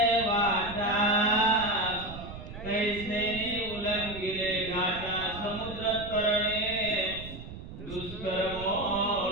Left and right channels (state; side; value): noise; right; rumble, 12 dB below the sound